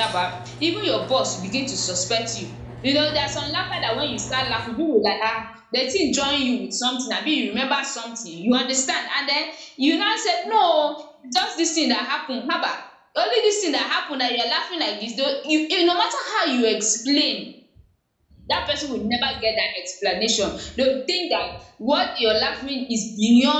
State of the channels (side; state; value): both; identical; correlation 1.00